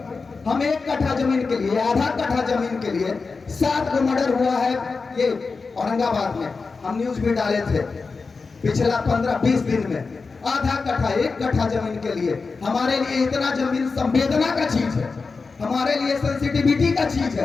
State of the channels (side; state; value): right; quieter; 4.4 dB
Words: हम 1 कट्ठा जमीन के लिए, आधा कट्ठा जमीन के लिए 7 को मर्डर हुआ है ये औरंगाबाद में। हम न्यूज भी डाले थे पिछला 15-20 दिन में। आधा कट्ठा, 1 कट्ठा जमीन के लिए। हमारे लिए इतना जमीन संवेदना का चीज है, हमारे लिए सेंसिटिविटी का चीज